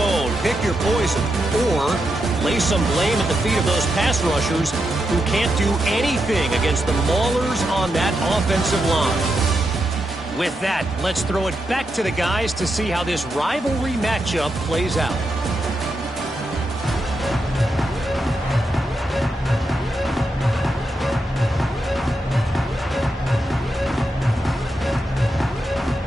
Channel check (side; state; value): both; normal; correlation 0.85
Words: pick your poison, or lay some blame at the feet of those pass rushers who can't do anything against the maulers on that offensive line. With that, let's throw it back to the guys to see how this rivalry matchup plays out.